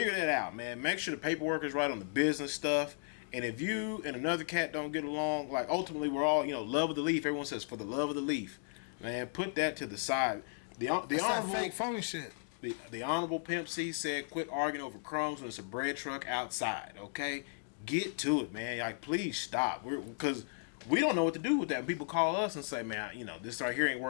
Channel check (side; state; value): right; silent; digital silence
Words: that out, man. Make sure the paperwork is right on the business stuff. And if you and another cat don't get along, like, ultimately we're all, love of the leaf. Everyone says for the love of the leaf. Man, put that to the side. That's that fake phony shit. The Honorable Pimp C said, quit arguing over crumbs when it's a bread truck outside, okay? Get to it, man. Like, please stop. Because we don't know what to do with that. People call us and say, man, this right here ain't